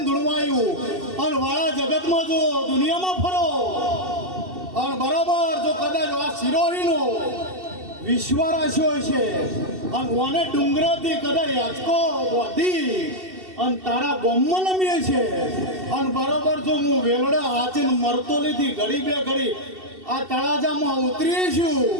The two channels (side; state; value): left; late; 2.7 ms